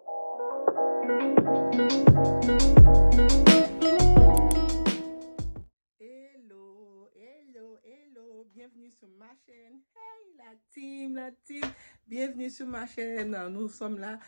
Bienvenue sur ma chaîne. Hey la team, bienvenue sur ma chaîne. Nous sommes là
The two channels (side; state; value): both; inverted; correlation -1.00